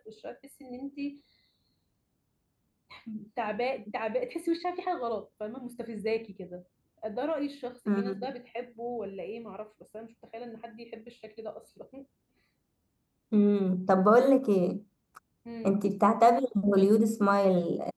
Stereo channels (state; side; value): identical; both; correlation 1.00